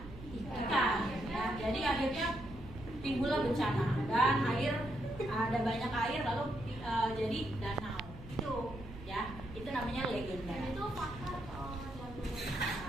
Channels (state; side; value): noise; right; hum, 15 dB below the sound